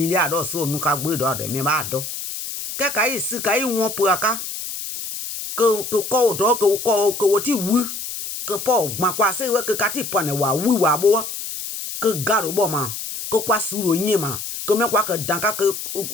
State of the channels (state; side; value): noise; left; hiss, 7 dB below the sound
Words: do so nu ka gbe do de me ba do ke ka yi si ka yi won po aka ko do ko ti wu que po gba kwa se we que kati pone wa wi wa bo que garo bo ma que kwa suro yin ma que me kwa que danka que